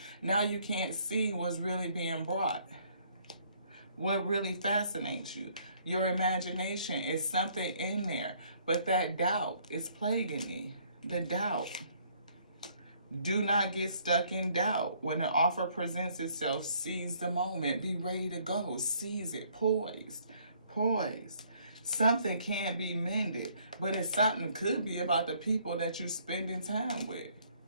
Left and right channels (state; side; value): inverted; both; correlation -0.64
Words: Now you can't see what's really being brought. What really fascinates you. Your imagination is something in there, but that doubt is plaguing me. The doubt. Do not get stuck in doubt. When an offer presents itself, seize the moment. Be ready to go. Seize it. Poised. Something can be mended, but something could be about the people that you're spending time with.